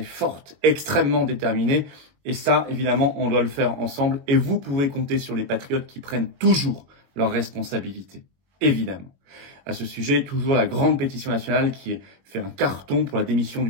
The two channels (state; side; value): late; left; 21 ms